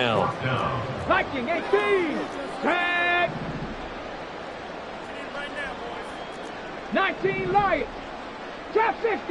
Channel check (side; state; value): both; identical; correlation 1.00